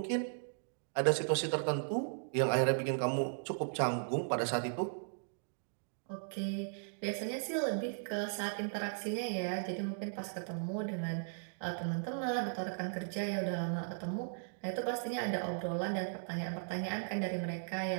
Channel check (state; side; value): silent; left; digital silence